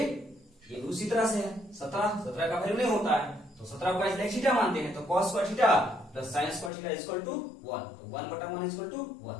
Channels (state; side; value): drops out; right; at 6.7 s